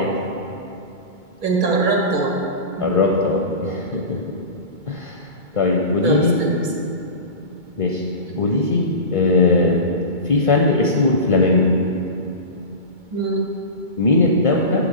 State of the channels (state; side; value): late; left; 2.2 ms